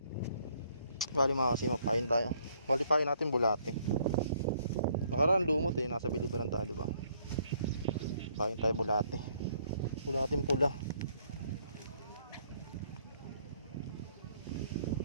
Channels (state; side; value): inverted; both; correlation -0.66